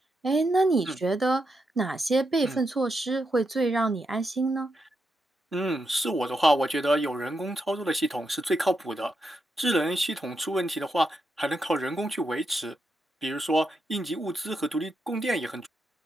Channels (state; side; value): normal; both; correlation 0.84